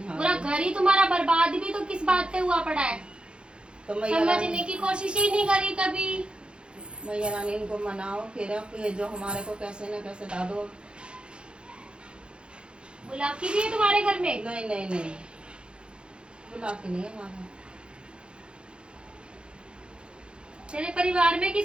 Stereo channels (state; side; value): late; left; 0.054 ms